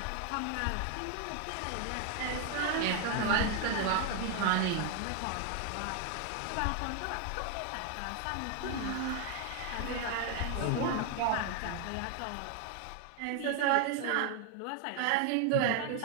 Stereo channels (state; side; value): different; both; correlation 0.00